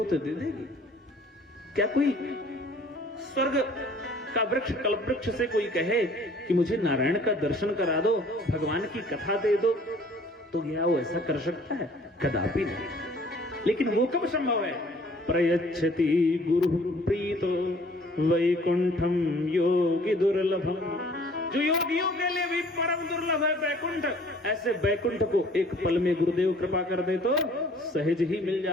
तो दे देगी? क्या कोई स्वर्ग का वृक्ष कल्प वृक्ष से कोई कहे कि मुझे नारायण का दर्शन करा दो, भगवान की कथा दे दो, तो क्या वो ऐसा कर सकता है? कदापि नहीं। लेकिन वो कब संभव है? प्रयच्छति गुरु प्रीतो वैकुंठम योगी दुर्लभम। जो योगियों के लिए भी परम दुर्लभ है बैकुंठ, ऐसे बैकुंठ को एक पल में गुरुदेव कृपा कर दे तो सहज ही मिल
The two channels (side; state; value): both; normal; correlation 0.54